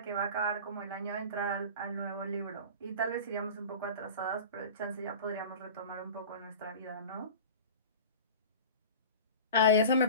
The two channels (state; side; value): inverted; both; correlation -0.35